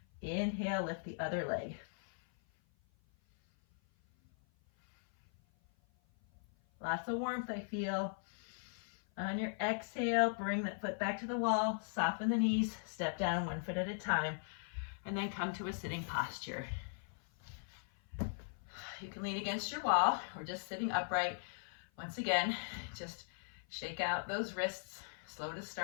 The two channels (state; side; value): silent; right; 52 dB below the other